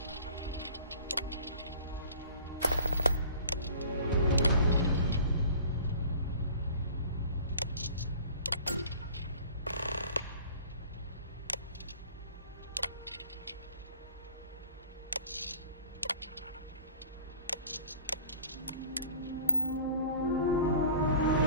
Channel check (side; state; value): both; inverted; correlation -0.45